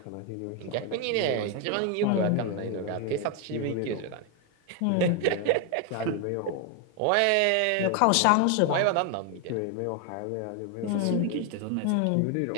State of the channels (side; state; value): both; different; correlation 0.01